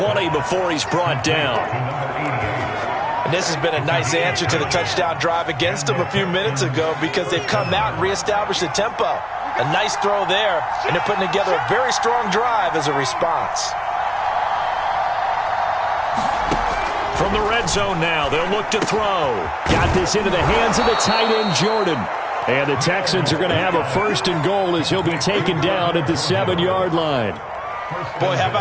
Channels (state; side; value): identical; both; correlation 1.00